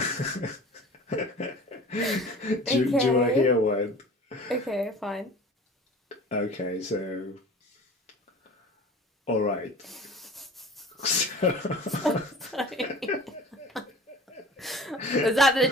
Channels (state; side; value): normal; both; correlation 0.42